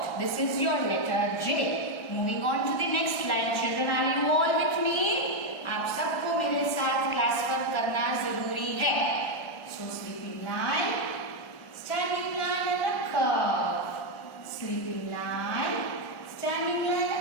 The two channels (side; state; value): right; late; 1.3 ms